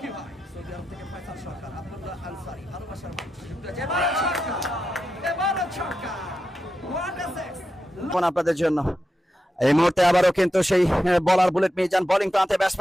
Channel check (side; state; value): both; normal; correlation 0.88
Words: ভাই, সৌদি আরব থেকে ফয়সাল সরকার, আব্দুল্লাহ আনসারি, ভালোবাসার মানুষ যুক্ত আছে। এবারও ছক্কা, এবারও ছক্কা, হোয়াট এ সিক্স আপনাদের জন্য। এই মুহূর্তে আবারও কিন্তু সেই বলার বুলেট মিজান, বোলিং প্রান্তে